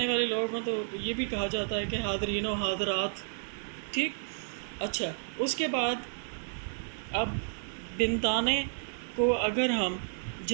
والے لوگ ہوں تو یہ بھی کہا جاتا ہے کہ حاضرین و حاضرات، ٹھیک؟ اچھا، اس کے بعد اب بنتانے کو اگر ہم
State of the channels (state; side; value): silent; left; digital silence